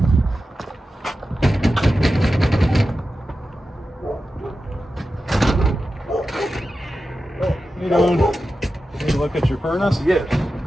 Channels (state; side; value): normal; both; correlation 0.92